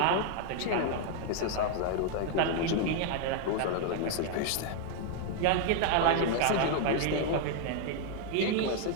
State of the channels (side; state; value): both; different; correlation 0.00